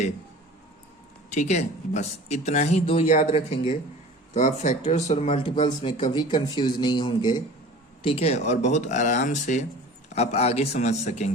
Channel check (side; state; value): both; normal; correlation 0.41